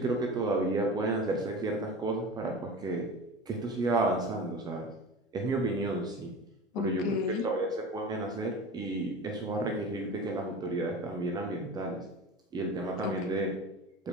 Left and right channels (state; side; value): normal; both; correlation 0.33